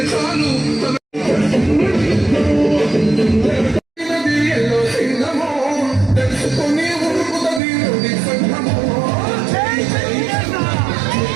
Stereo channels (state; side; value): drops out; left; at 7.6 s